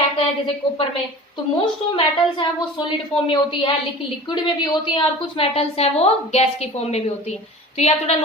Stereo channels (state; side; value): normal; both; correlation 0.38